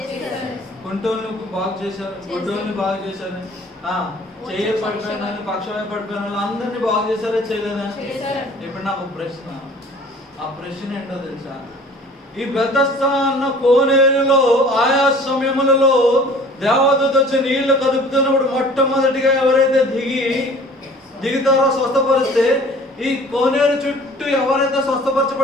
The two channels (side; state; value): both; normal; correlation 0.48